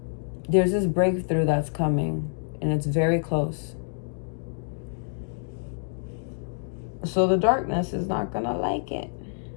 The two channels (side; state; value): right; silent; digital silence